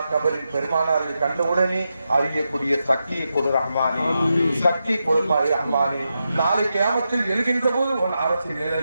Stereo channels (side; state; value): both; inverted; correlation -0.87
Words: கபரில் பெருமானாரை கண்டவுடனே அறியக்கூடிய சக்தியை கொடு ரஹ்மானே. சக்தி கொடுப்பாய் ரஹ்மானே. நாளை கியாமத்தில் எழுகின்ற போது உன் அரசு